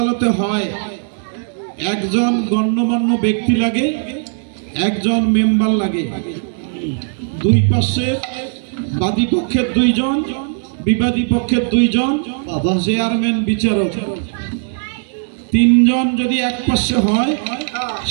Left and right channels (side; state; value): left; silent; 67 dB below the other